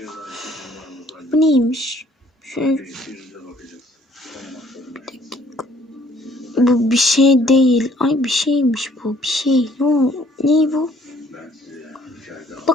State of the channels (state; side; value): normal; both; correlation 0.60